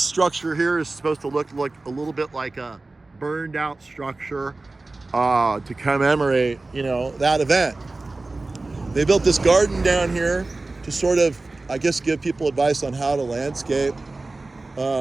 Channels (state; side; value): quieter; left; 3.3 dB